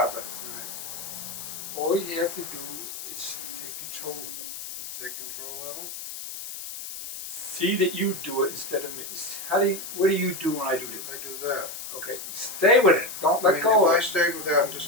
it. Right. All you have to do is take control of it. Take control of it. See that you do it instead of me. What do you do when I do this? I do that. Okay, stay with it. Don't let go of it. If I stayed with that and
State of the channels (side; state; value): left; noise; hiss, 9 dB below the sound